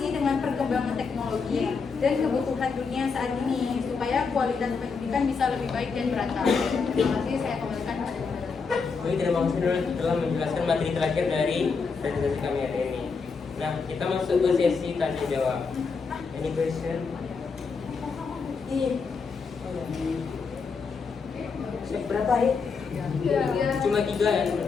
dengan perkembangan teknologi dan kebutuhan dunia saat ini supaya kualitas pendidikan bisa lebih baik dan merata. Terima kasih, saya kembalikan kepada Baik, terima kasih telah menjelaskan materi terakhir dari presentasi kami hari ini. Nah, kita masuk ke sesi tanya jawab. Any question? Berapa ya? Cuma 3 ya?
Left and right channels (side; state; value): right; quieter; 5.1 dB